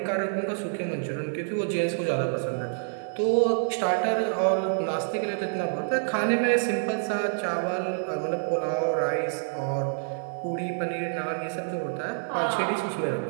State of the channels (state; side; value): silent; left; digital silence